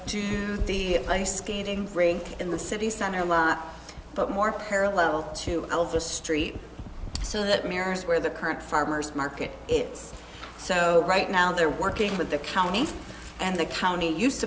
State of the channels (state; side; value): identical; both; correlation 1.00